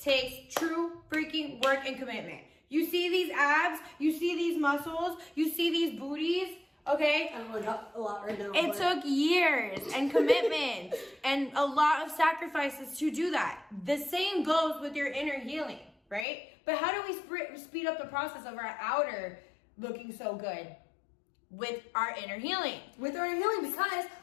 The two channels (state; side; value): drops out; right; at 16.2 s